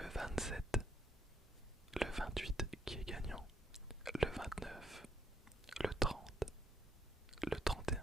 27, le 28 qui est gagnant, le 29, le 30, le 31,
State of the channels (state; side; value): normal; both; correlation 0.70